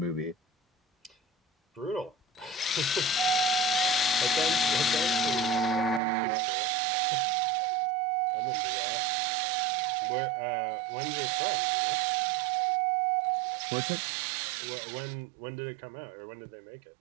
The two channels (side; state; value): left; drops out; at 6.0 s